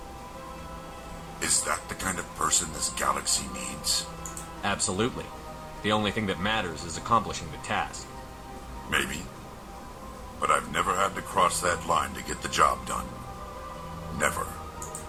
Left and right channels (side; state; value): both; identical; correlation 1.00